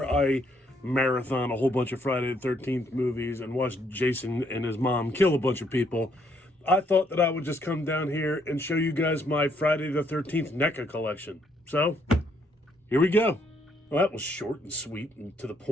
I marathon a whole bunch of Friday the 13th movies and watch Jason and his mom kill a bunch of people, I thought that I would just come down here and show you guys my Friday the 13th NECA collection. So, here we go. Well, that was short and sweet and to the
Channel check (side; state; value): both; normal; correlation 0.71